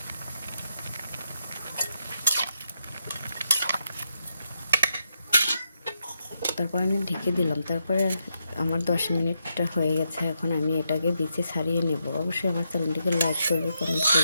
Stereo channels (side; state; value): both; inverted; correlation -0.82